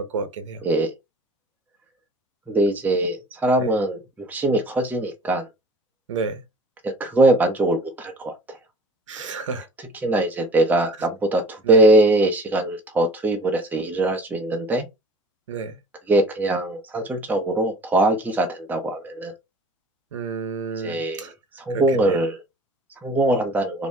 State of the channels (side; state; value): both; normal; correlation 0.45